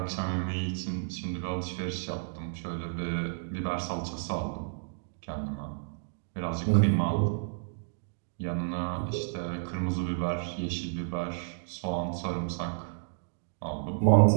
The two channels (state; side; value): silent; left; digital silence